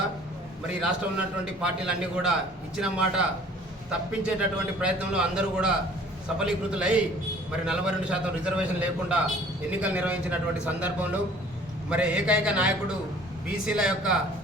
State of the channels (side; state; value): both; normal; correlation 0.52